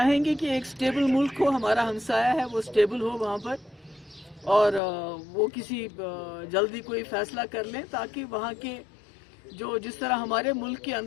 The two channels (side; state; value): right; drops out; at 4.8 s